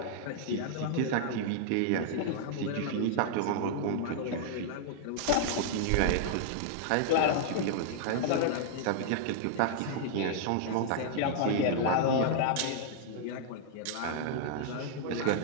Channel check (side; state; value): both; different; correlation -0.01